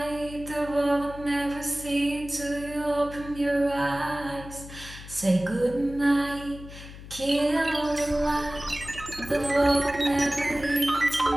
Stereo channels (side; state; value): left; noise; hum, 14 dB below the sound